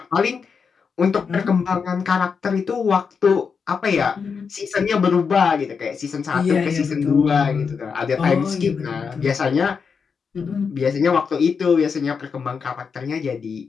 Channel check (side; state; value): right; quieter; 5.8 dB